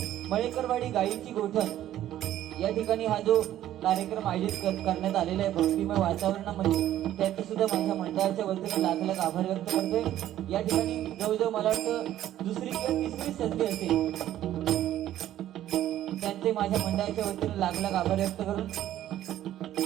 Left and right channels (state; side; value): quieter; left; 12.6 dB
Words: मळेकरवाडी गायीची गोठण या ठिकाणी हा जो कार्यक्रम आयोजित करण्यात आलेला आहे भक्तिमय वातावरणामध्ये त्याचे सुद्धा माझ्या मंडळाच्या वतीने लाख लाख आभार व्यक्त करतोय। या ठिकाणी जवळजवळ मला वाटतं दुसरी किंवा तिसरी संधी असेल त्यांचे माझ्या मंडळाच्या वतीने लाख लाख आभार व्यक्त करून